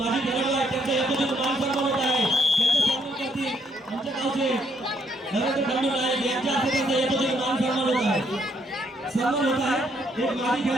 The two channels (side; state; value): both; normal; correlation 0.71